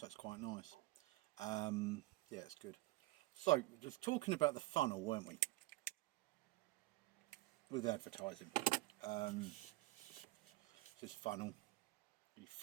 that's quite nice. Yeah, it's good. So, just talking about the funnel, weren't we? With advertising. This funnel, you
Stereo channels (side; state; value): left; quieter; 20.1 dB